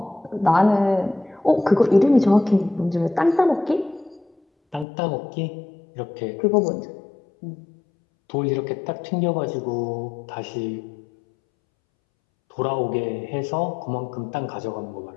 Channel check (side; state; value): right; drops out; at 4.9 s